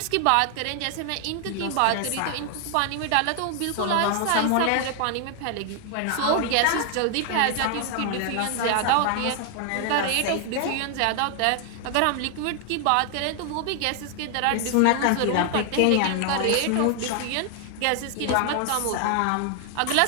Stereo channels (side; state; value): both; different; correlation 0.00